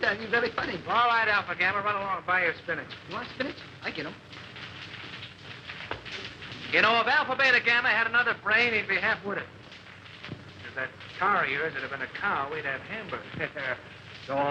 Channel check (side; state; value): both; identical; correlation 1.00